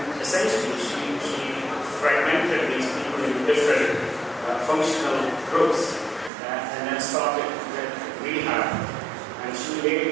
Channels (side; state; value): left; drops out; at 6.3 s